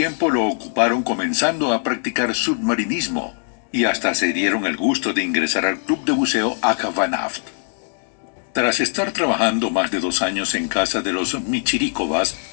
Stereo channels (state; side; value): silent; right; digital silence